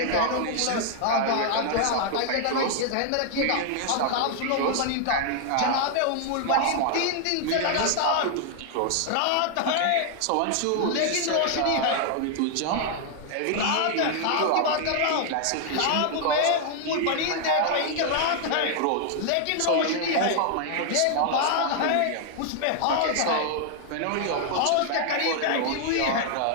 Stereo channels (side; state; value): both; different; correlation 0.00